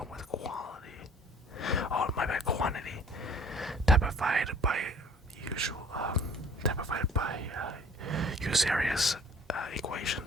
with quantity, typified by Eusebius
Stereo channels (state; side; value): normal; both; correlation 0.51